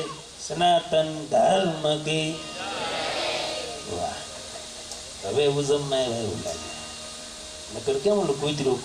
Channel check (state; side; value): identical; both; correlation 1.00